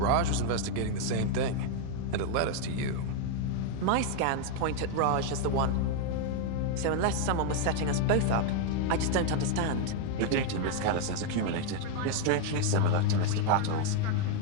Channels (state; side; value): different; both; correlation 0.01